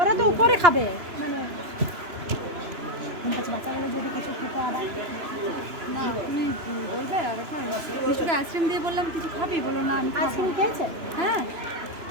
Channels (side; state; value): left; late; 2.9 ms